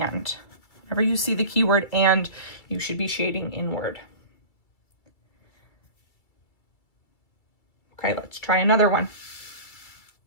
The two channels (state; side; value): late; right; 2.2 ms